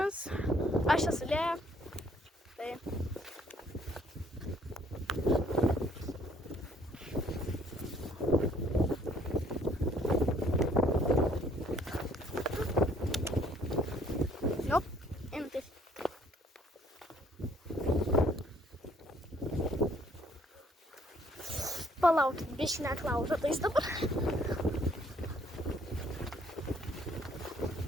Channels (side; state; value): both; normal; correlation 0.63